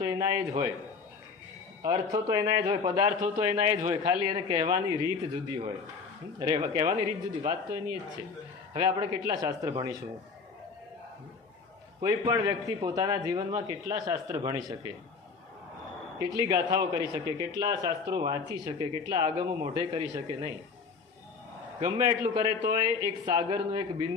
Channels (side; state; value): right; quieter; 5.0 dB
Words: એના એ જ હોય, અર્થો તો એના જ હોય, પદાર્થો તો એના જ હોય, ખાલી એને કહેવાની રીત જુદી હોય. કહેવાની રીત જુદી, વાત તો એની જ છે. હવે આપણે કેટલા શાસ્ત્ર ભણીશું? કોઈ પણ વ્યક્તિ પોતાના જીવનમાં કેટલા શાસ્ત્ર ભણી શકે, કેટલી ગાથાઓ કરી શકે, કેટલા શાસ્ત્રો વાંચી શકે, કેટલા આગમો મોઢે કરી શકે? નહીં. ગમે એટલું કરે તો એક સાગરનું એક